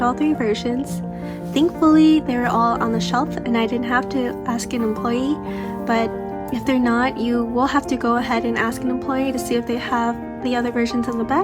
all 3 versions. Thankfully they were all on the shelf and I didn't have to ask an employee, but if they're not, you will have to go ahead and ask an employee to see if they have the other versions in the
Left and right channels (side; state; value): both; identical; correlation 1.00